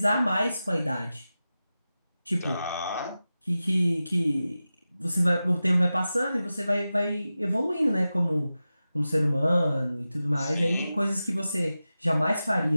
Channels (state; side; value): inverted; both; correlation -0.94